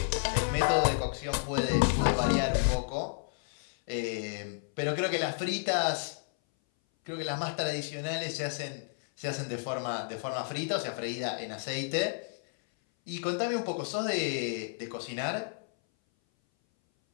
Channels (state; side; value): silent; right; 57 dB below the other